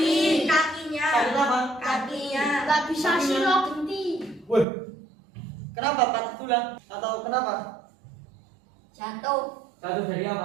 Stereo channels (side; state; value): left; drops out; at 4.7 s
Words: kakinya. Sakit apa? Kakinya. Gak bisa silo genti. Wih, kenapa patah tulang? Atau kenapa? Jatuh. Jatuh dari